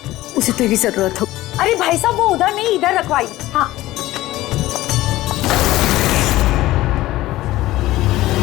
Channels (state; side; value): quieter; right; 16.6 dB